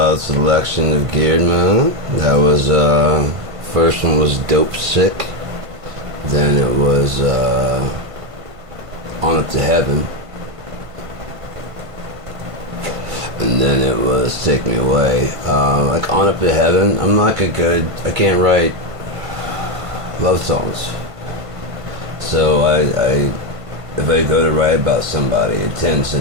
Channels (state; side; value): late; left; 1.5 ms